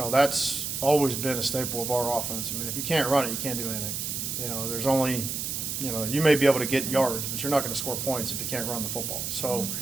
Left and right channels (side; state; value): right; noise; hiss, 3 dB below the sound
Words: that's always been a staple of our offense. If you can't run it, you can't do anything. There's only, you may be able to get yards, but you're not going to score points if you can't run the football. So,